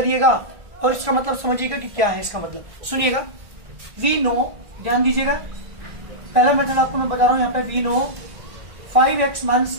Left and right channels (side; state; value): left; late; 1.4 ms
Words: और इसका मतलब समझिएगा कि क्या है इसका मतलब। सुनिएगा, वी नो, ध्यान दीजिएगा, पहला मेथड आपको मैं बता रहा हूं यहाँ पे, वी नो 5x